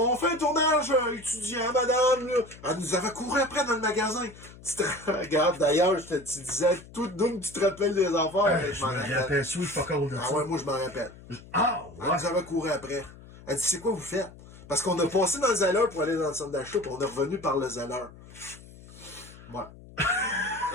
fait un tournage étudiant, madame. Là. Elle nous avait couru après dans le magasin. Tu te regardes, d'ailleurs, tu disais tout d'où tu te rappelles des affaires. Je me rappelle, sweet fuck all de ça. Ah ouais, moi je m'en rappelle. Ouais. Elle nous avait couru après. Elle dit, c'est quoi vous faites? Parce qu'on a passé dans le Zeller pour aller dans le centre d'achat, puis on est revenu par le Zeller. Ouais.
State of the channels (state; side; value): noise; left; hum, 19 dB below the sound